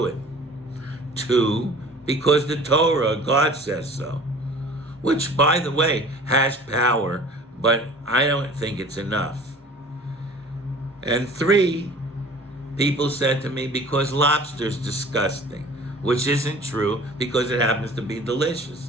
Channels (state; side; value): normal; both; correlation 0.45